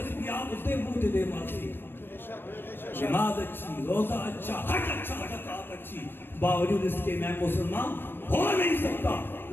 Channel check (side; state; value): right; late; 0.099 ms